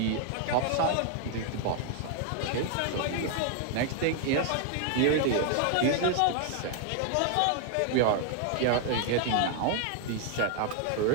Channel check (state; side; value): different; both; correlation 0.00